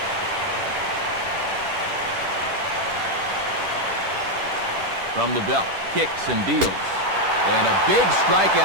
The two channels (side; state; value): left; late; 10 ms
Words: From the belt, kicks and deals. And a big